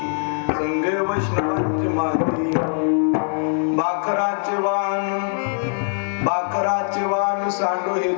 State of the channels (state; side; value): silent; right; 61 dB below the other